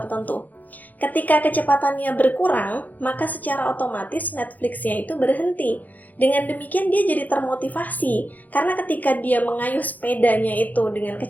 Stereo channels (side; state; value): right; late; 0.081 ms